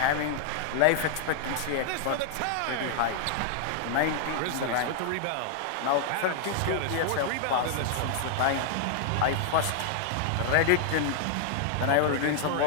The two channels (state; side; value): different; both; correlation -0.01